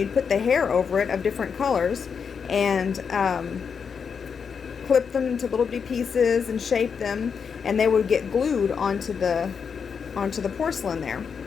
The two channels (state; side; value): quieter; right; 6.3 dB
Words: put the hair over it of different colors and clip them into little bitty pieces and shape them, and they would get glued onto the porcelain there.